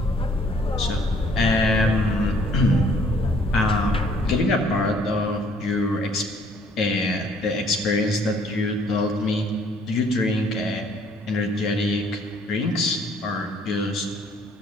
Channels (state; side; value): normal; both; correlation 0.61